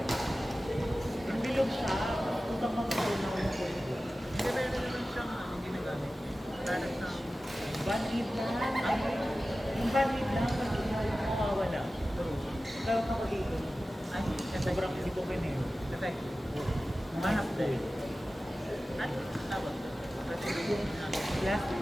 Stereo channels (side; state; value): both; normal; correlation 0.95